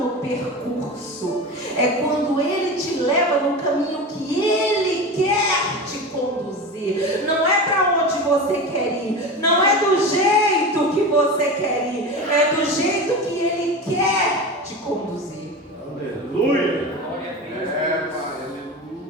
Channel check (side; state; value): both; normal; correlation 0.27